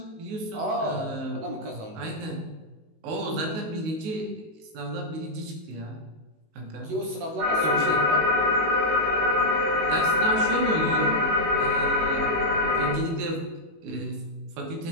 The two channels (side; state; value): left; late; 19 ms